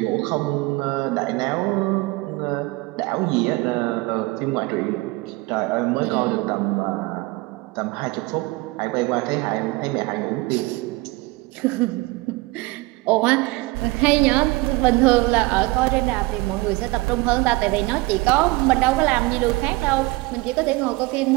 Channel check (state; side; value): quieter; left; 22.6 dB